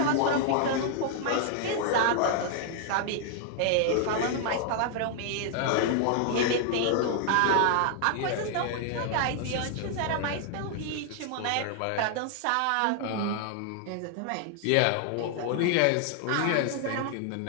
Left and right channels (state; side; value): different; both; correlation 0.00